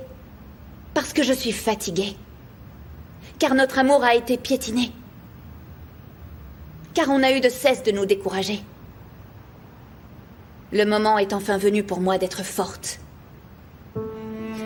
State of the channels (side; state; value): both; identical; correlation 1.00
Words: Parce que je suis fatiguée. Car notre amour a été piétiné. Car on a eu de cesse de nous décourager. Le moment est enfin venu pour moi d'être forte.